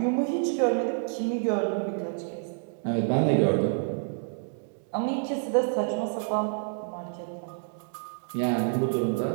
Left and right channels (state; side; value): silent; left; 59 dB below the other